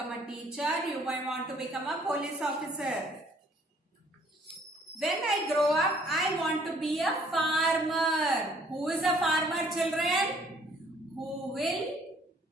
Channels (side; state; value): both; normal; correlation 0.61